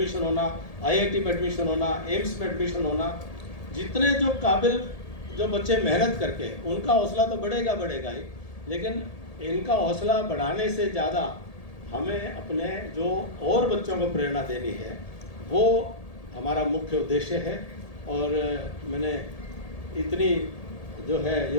होना, आईआईटी में एडमिशन होना, एम्स में एडमिशन होना। जितने जो काबिल जो बच्चे मेहनत करके, उनका हौसला तो बढ़ेगा ही, लेकिन इनका हौसला बढ़ाने से ज़्यादा हमें अपने जो और बच्चों को प्रेरणा देनी है, वो हमारा मुख्य उद्देश्य है। और मैंने इतनी जो है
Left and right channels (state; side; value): late; right; 1.8 ms